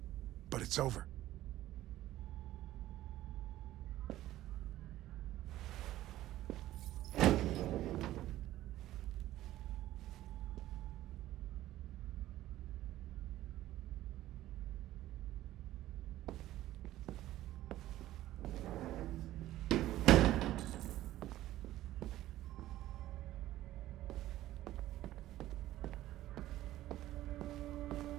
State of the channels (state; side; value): quieter; left; 14.7 dB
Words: but it's over.